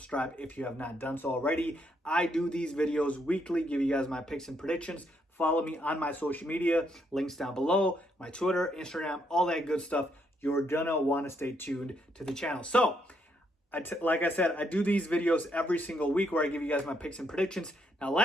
if you have not done so already. I do these videos weekly, give you guys my picks and predictions. Follow me on my social media, links down below, my Twitter, Instagram, all that good stuff. You're gonna want to stay tuned to the channel. So like I said, I do these videos every single week where I give you guys my picks and predictions. Now,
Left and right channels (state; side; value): normal; both; correlation 0.75